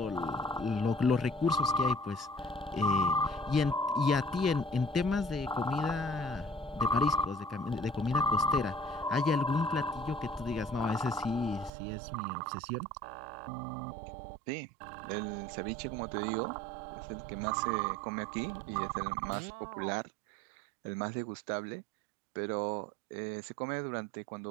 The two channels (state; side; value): drops out; left; at 11.7 s